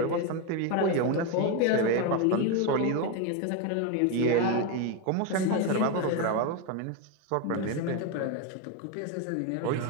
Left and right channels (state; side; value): different; both; correlation 0.02